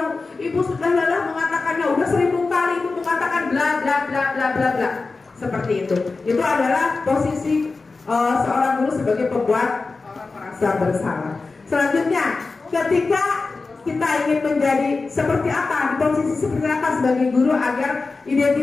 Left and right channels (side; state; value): right; quieter; 3.9 dB